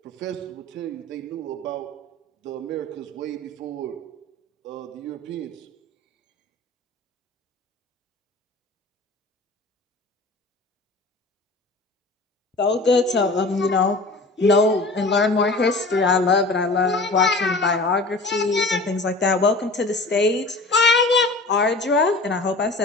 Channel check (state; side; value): quieter; right; 3.0 dB